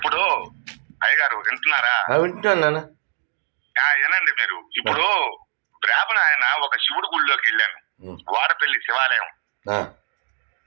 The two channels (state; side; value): silent; left; digital silence